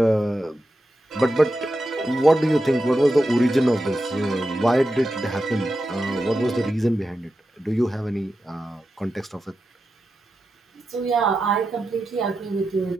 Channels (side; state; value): both; normal; correlation 0.89